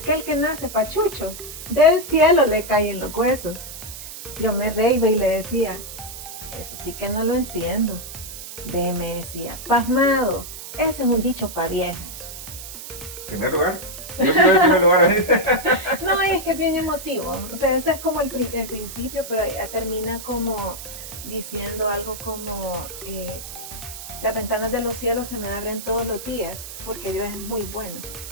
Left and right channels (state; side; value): noise; right; hiss, 11 dB below the sound